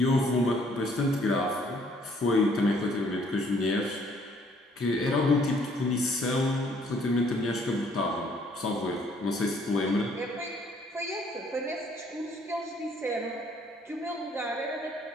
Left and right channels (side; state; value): both; normal; correlation 0.63